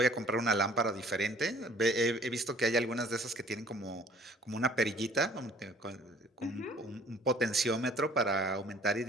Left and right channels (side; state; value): both; normal; correlation 0.53